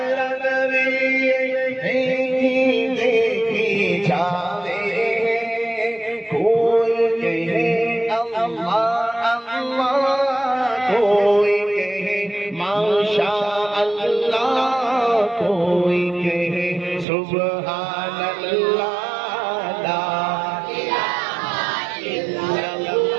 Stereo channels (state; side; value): drops out; left; at 17.1 s